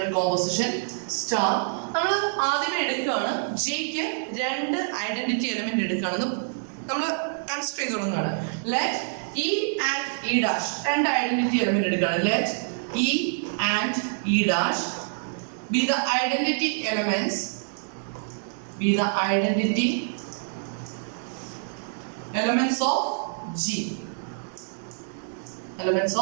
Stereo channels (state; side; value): silent; left; 61 dB below the other